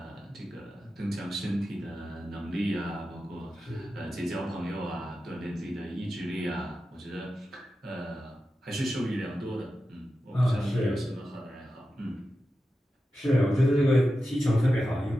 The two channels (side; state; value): both; normal; correlation 0.91